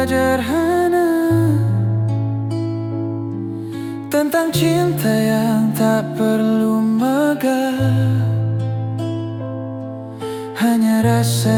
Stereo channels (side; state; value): both; identical; correlation 1.00